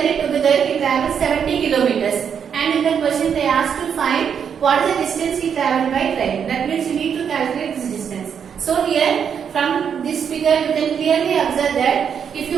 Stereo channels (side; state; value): left; quieter; 7.5 dB